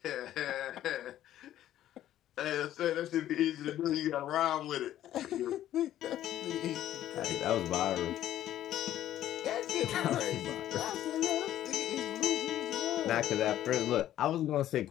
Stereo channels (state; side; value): quieter; right; 12.5 dB